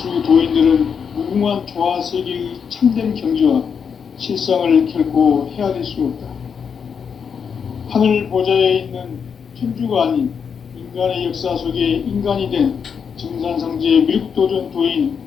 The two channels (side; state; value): right; quieter; 6.7 dB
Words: 도인들은 무궁한 조화 세계의 참된 경지와 실상을 결코 헤아릴 수 없다. 하늘 보좌에 있는 천주가 아닌 인간의 역사 속에 인간이 된 증산상제 미륵도전 도인